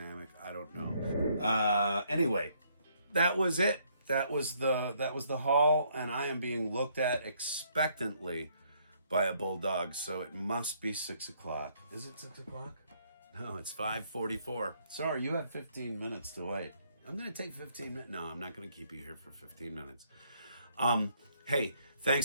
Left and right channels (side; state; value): both; inverted; correlation -0.69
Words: I don't know. Anyway, that was it. That was the haul, and I am being looked at expectantly by a bulldog, so it must be 6 o'clock. Is it 6 o'clock? No, it's 5:44. Sorry, you have 15 minutes to wait. I'm going to take 15 minutes. No, I'm not going to keep you here for 15 minutes. Hey,